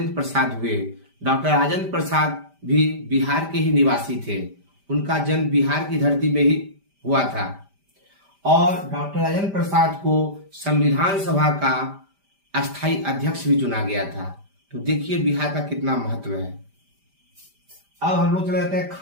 प्रसाद हुए। डॉक्टर राजेंद्र प्रसाद भी बिहार के ही निवासी थे। उनका जन्म बिहार की धरती में ही हुआ था और डॉक्टर राजेंद्र प्रसाद को संविधान सभा का अस्थायी अध्यक्ष भी चुना गया था। तो देखिए बिहार का कितना महत्व है। अब हम लोग चले जाते हैं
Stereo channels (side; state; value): left; late; 5.1 ms